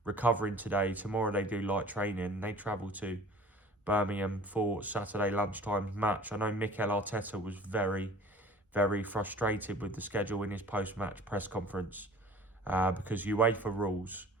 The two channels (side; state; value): both; normal; correlation 0.45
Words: recovering today. Tomorrow they do light training. They travel to Birmingham for Saturday lunchtime match. I know Mikel Arteta was very, very frustrated with the schedule in his post-match press conference, because UEFA rules